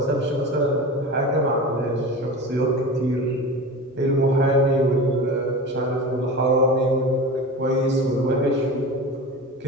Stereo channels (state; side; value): normal; both; correlation 0.31